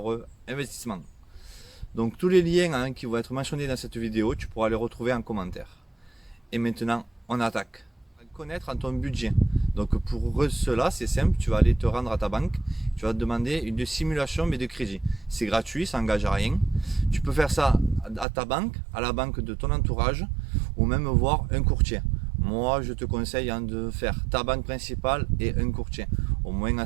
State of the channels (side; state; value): left; drops out; at 18.2 s